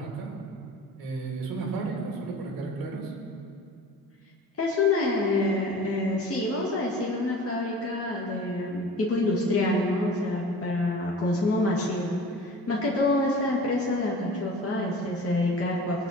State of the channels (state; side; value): normal; both; correlation 0.41